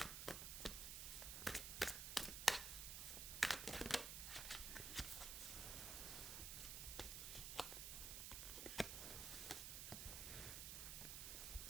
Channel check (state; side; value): noise; right; hiss, 3 dB below the sound